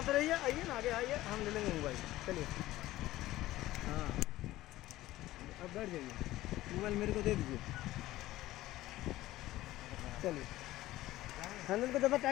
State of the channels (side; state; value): right; quieter; 16.2 dB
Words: रहिए। आइए ना, आगे आइए, हम ले लेंगे मोबाइल। चलिए हाँ, अब बैठ जाइए, मोबाइल मेरे को दे दीजिए। चलिए, हैंडल को ज़्यादा